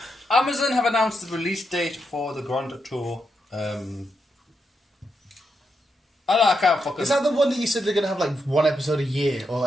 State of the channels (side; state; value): both; normal; correlation 0.83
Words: Amazon have announced the release date for the Grand Tour. I can't fucking. Is that the one that you said they're gonna have like one episode a year, or